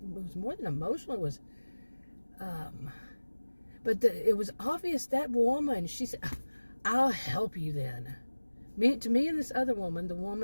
was more than emotional. It was, but it was obvious that woman. She said, "I'll help you then." To me and this other woman, the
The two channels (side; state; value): both; inverted; correlation -1.00